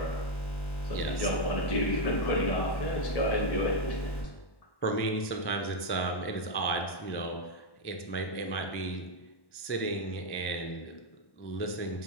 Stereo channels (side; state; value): right; late; 1.1 ms